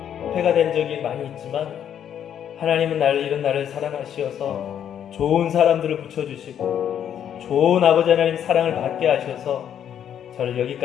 폐가 된 적이 많이 있지만 하나님은 이런 나를 사랑하시어서 좋은 사람들을 붙여주시고 좋은 아버지 하나님 사랑을 받게 하셔서 저를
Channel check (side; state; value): right; quieter; 9.4 dB